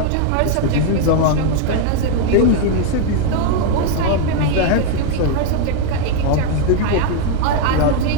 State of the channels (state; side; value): different; both; correlation 0.00